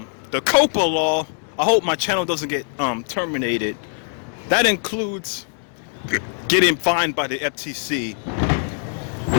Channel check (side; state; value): right; silent; 57 dB below the other